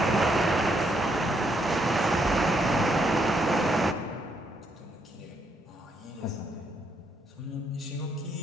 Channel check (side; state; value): both; normal; correlation 0.75